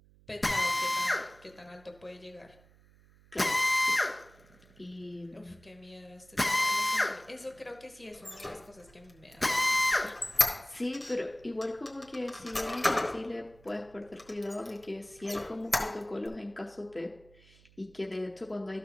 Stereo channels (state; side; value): noise; right; hum, 27 dB below the sound